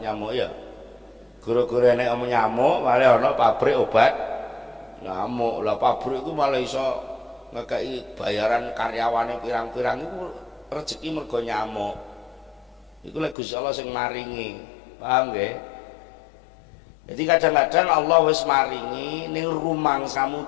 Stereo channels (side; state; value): right; drops out; at 13.4 s